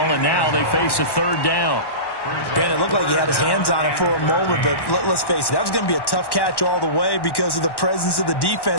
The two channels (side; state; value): right; late; 1.1 ms